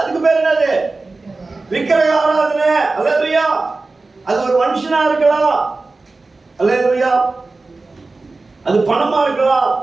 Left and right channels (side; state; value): left; quieter; 3.6 dB